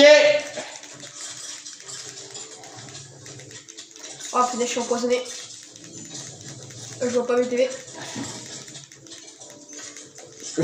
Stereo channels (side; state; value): both; identical; correlation 1.00